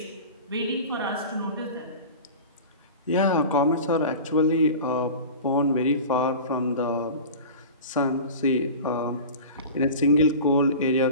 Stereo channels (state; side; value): inverted; both; correlation -0.34